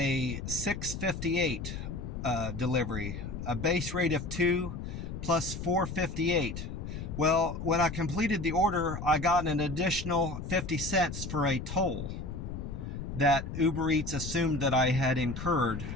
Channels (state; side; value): noise; left; rumble, 7 dB below the sound